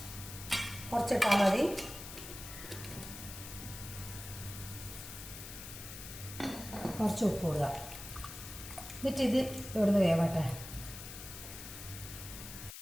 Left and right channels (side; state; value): left; noise; hiss, 11 dB below the sound